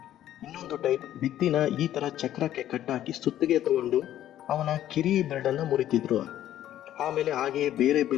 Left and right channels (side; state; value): right; quieter; 12.2 dB